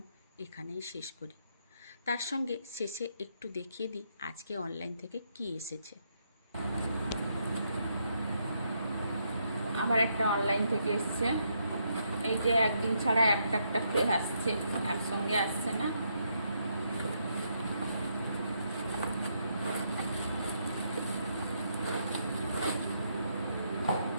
এখানেই শেষ করি। তার সঙ্গে শেষে একটু দেখিয়ে দিই আজকে অনলাইন থেকে কি এসেছে। আমার একটা অনলাইন থেকে এসছে। এই যে একদিন ছাড়া একটা একটা করে আসছে, একসঙ্গে আসছে না।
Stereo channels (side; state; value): both; inverted; correlation -0.77